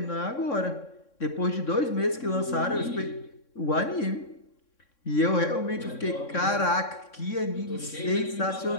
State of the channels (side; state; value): right; late; 3.6 ms